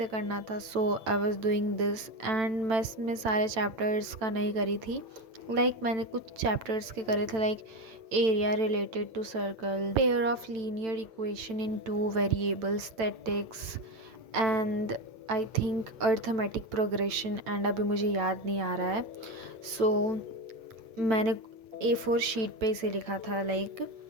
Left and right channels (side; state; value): left; late; 9.0 ms